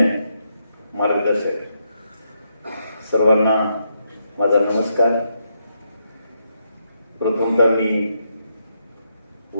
मार्गदर्शक, सर्वांना माझा नमस्कार. प्रथमतः मी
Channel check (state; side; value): inverted; both; correlation -0.80